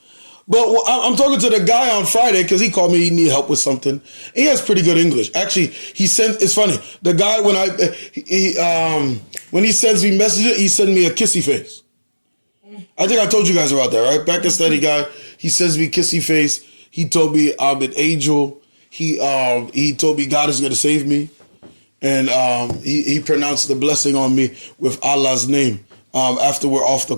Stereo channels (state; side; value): inverted; both; correlation -1.00